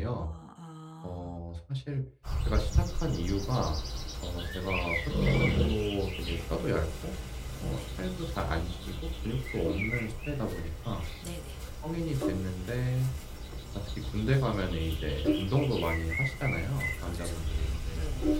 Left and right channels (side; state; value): both; identical; correlation 1.00